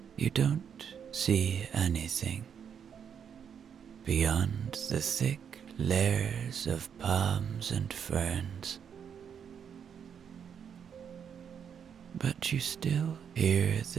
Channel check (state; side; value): quieter; left; 7.7 dB